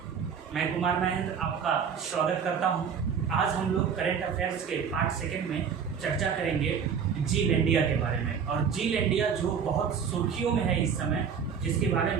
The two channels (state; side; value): quieter; left; 6.9 dB